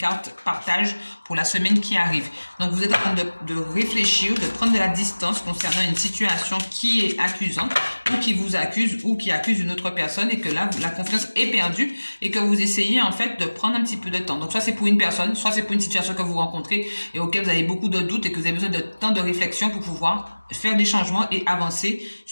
partagent pour la semaine qui arrive. Donc, vous êtes en train de réfléchir, de prendre de la distance concernant une situation qui est accusante ou qui vous accuse ou qui accuse une autre personne et que là, la confiance est perdue et que vous essayez en fait de prendre un petit peu de temps. Donc, soit c'est pour une personne, soit c'est pour une situation que vous rencontrez et auquel vous avez beaucoup de doutes et que vous avez besoin de temps de réflexion pour pouvoir faire des changements et avancer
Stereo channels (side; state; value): both; inverted; correlation -1.00